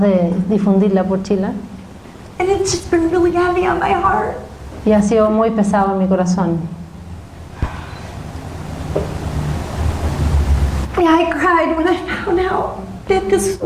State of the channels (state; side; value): identical; both; correlation 1.00